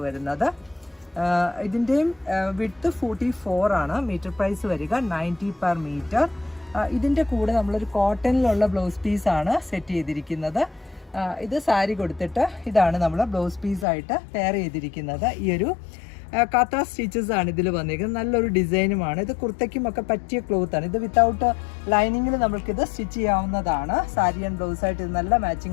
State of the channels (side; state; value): right; drops out; at 13.9 s